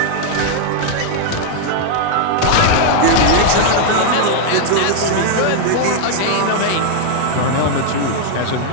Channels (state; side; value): different; both; correlation 0.00